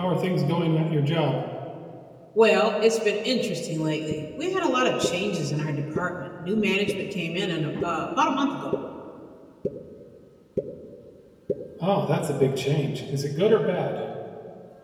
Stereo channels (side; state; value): both; identical; correlation 1.00